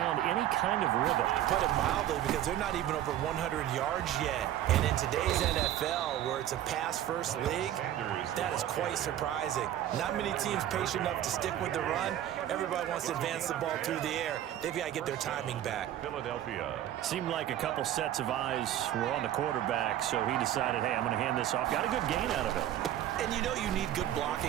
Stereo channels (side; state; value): left; quieter; 12.1 dB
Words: any kind of rhythm. Put it mildly, because they're not even over 100 yards yet. And in today's NFL, where it's a pass-first league, that is quite surprising. Not many teams patient enough to stick with the run. Everybody wants to advance the ball through the air. They've got to get their timing back. Philadelphia. Seemed like a couple sets of eyes were on the quarterback, so he decided, hey, I'm going to hand this off. Got a good gain out of it. And you know you need good